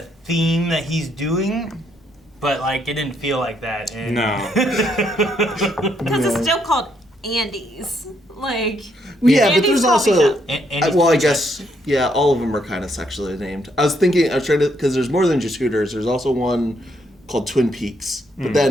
theme that he's doing. But, like, it didn't feel like that. No. Because it's still called Andy's. Like, yeah, but Andy's there's coffee also, shop. I guess, yeah, all of them are kind of sexually named. I was trying to, because there's more than just Hooters. There's also one called Twin Peaks, but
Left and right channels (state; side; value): normal; both; correlation 0.73